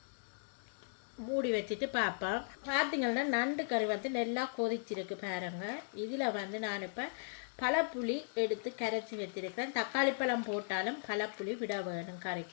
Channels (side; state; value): right; silent; digital silence